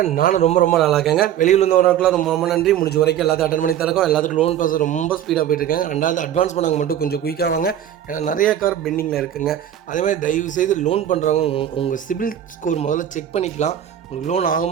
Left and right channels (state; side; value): quieter; left; 10.6 dB